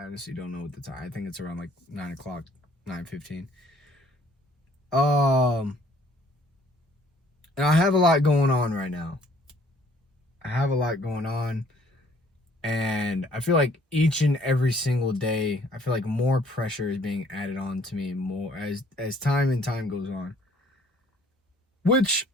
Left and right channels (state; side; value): normal; both; correlation 0.60